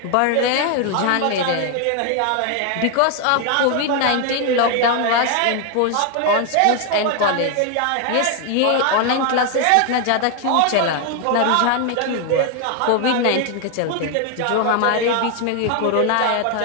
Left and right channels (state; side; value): different; both; correlation 0.01